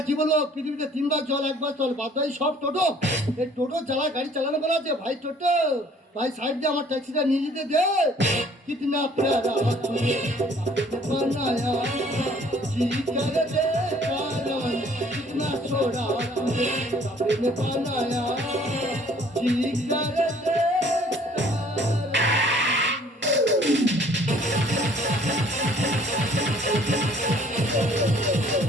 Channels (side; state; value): both; normal; correlation 0.57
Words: কি বলবো, পৃথিবীতে 3 বার চল 1 বার চল, বাদ বাকি সব টোটো। এই টোটো চালায়, গাড়ি চালানো বলা আছে ভাই টোটো ভাই, সাইড দিয়ে আমার ট্যাক্সিটা নিয়ে যেতে দে। কিতনা প্যারা তুঝে बनाया, जी कर दे कारण कितना छोड़ा तुझे अपने बनाया, जी कर दे।